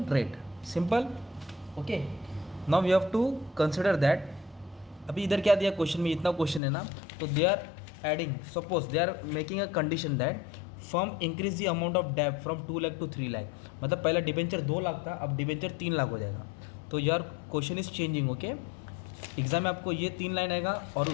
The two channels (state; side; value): drops out; right; at 6.6 s